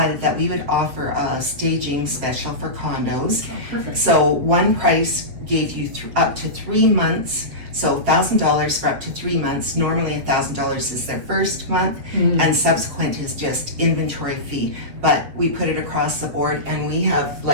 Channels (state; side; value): late; left; 8.1 ms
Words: that we would offer a staging special for condos. Oh, perfect. So one price gave you up to 3 months. So $1,000 for up to 3 months. Normally $1,000 is their first month, and subsequent is just inventory fee. But we put it across the board, and we have